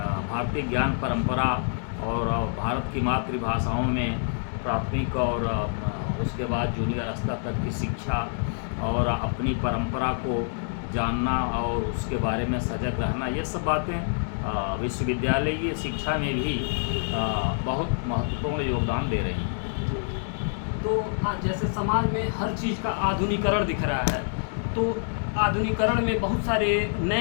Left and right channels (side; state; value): right; silent; digital silence